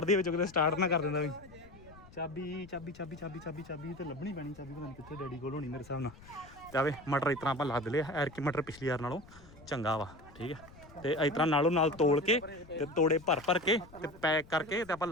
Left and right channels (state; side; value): noise; left; rumble, 21 dB below the sound